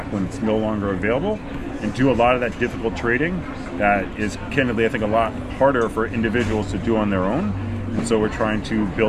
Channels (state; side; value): identical; both; correlation 1.00